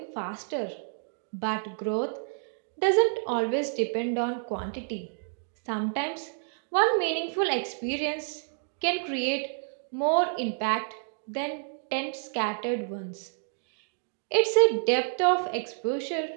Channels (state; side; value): silent; left; digital silence